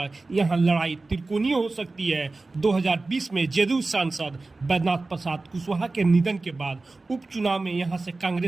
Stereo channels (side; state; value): left; quieter; 3.4 dB